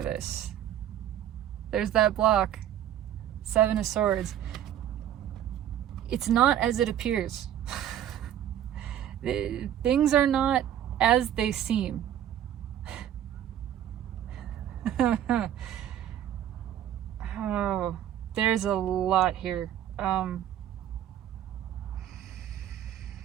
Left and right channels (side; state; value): left; quieter; 10.9 dB